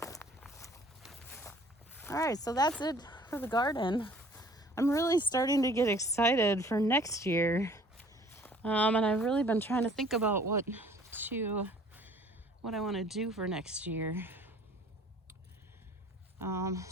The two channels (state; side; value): normal; both; correlation 0.53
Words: All right, so that's it for the garden. I'm really starting to get excited for next year. And I've really been trying to think about what I want to do for next year.